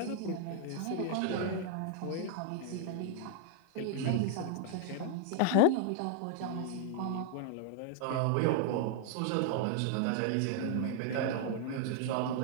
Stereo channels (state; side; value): different; both; correlation -0.01